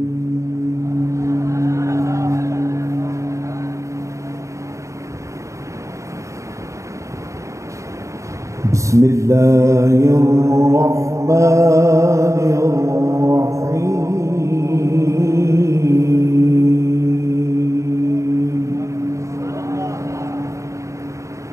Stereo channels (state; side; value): late; left; 0.15 ms